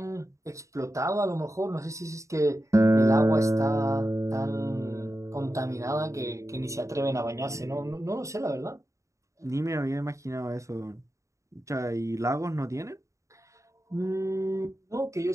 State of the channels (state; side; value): late; left; 0.15 ms